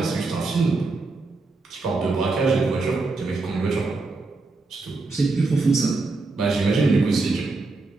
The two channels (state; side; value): quieter; left; 3.6 dB